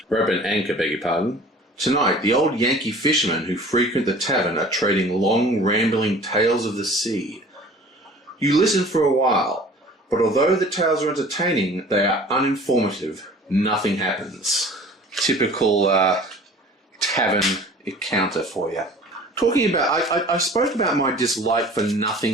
rope and anchor, beg your pardon. Tonight, the old Yankee fishermen who frequent the tavern are trading long, rambling tales of the sea. You listen for a while, but although the tales are entertaining, they are uninformative. Nothing happens. Typical tavern encounter for you. Talking about, I spoke about my dislike for nothing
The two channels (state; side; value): normal; both; correlation 0.45